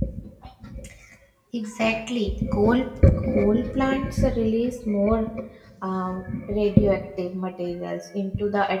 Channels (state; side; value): identical; both; correlation 1.00